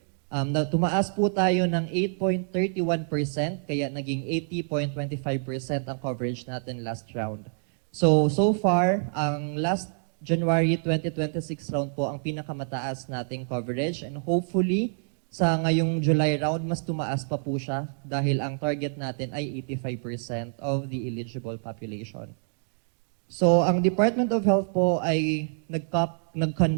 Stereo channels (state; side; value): silent; left; digital silence